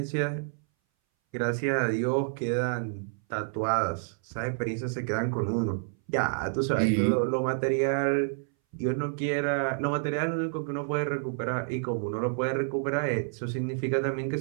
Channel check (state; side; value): silent; left; 58 dB below the other